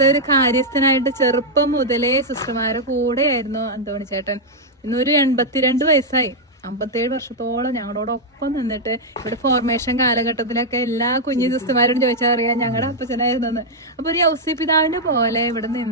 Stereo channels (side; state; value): both; normal; correlation -0.03